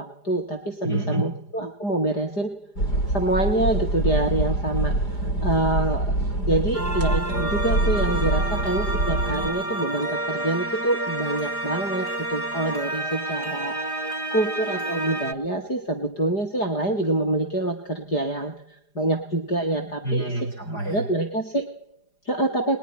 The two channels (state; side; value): late; right; 4.9 ms